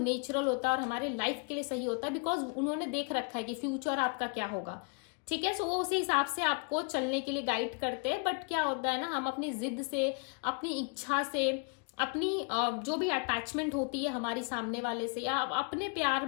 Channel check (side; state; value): right; quieter; 36.6 dB